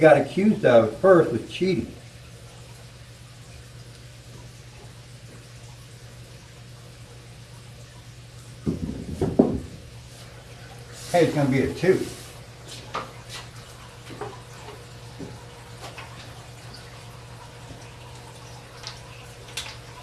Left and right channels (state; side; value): identical; both; correlation 1.00